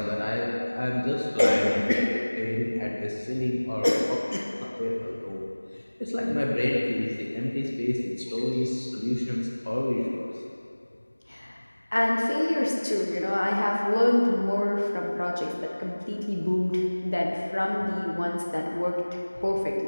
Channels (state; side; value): inverted; both; correlation -1.00